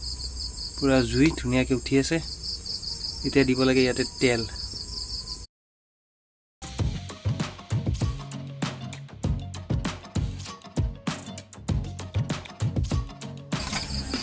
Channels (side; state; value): both; identical; correlation 1.00